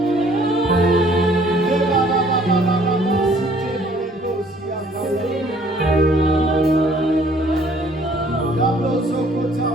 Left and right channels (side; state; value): both; normal; correlation 0.59